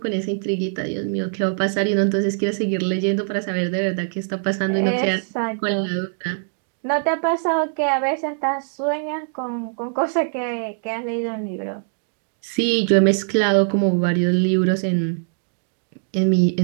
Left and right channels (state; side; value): silent; left; digital silence